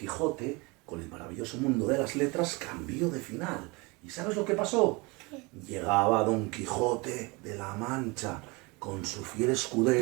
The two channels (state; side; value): quieter; left; 26.6 dB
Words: con el maravilloso mundo de las letras cambió de final. ¿Y sabes lo que pasó? Llegaba Don Quijote de la Mancha con su fiel